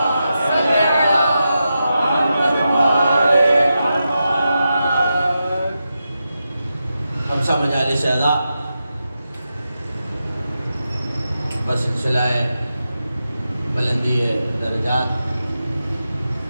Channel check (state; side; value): inverted; both; correlation -0.89